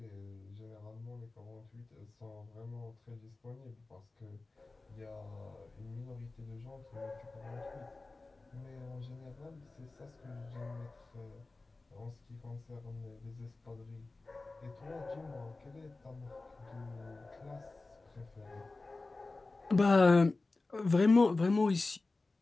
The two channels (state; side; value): quieter; right; 3.4 dB